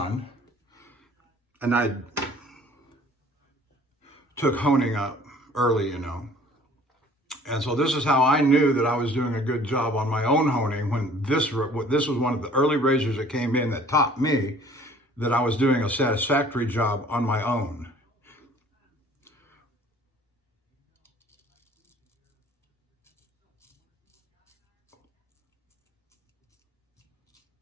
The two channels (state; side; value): normal; both; correlation 0.52